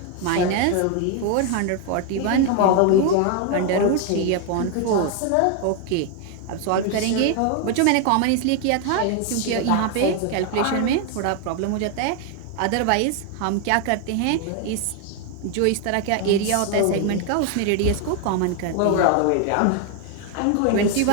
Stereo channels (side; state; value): both; different; correlation 0.01